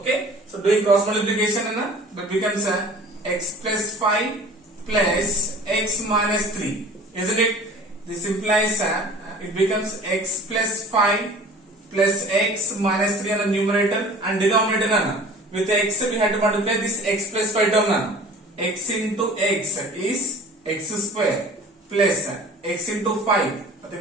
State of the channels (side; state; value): both; normal; correlation 0.44